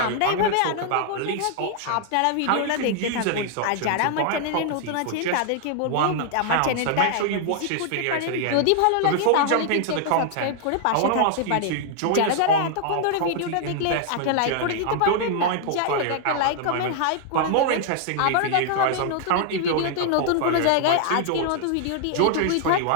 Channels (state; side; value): different; both; correlation 0.00